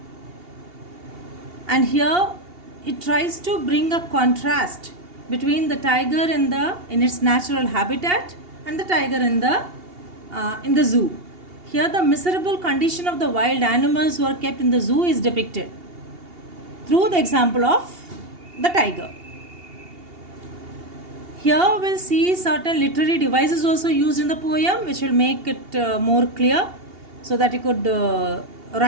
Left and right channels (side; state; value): left; late; 2.8 ms